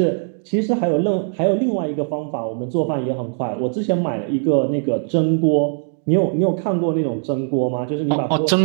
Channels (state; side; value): silent; left; 66 dB below the other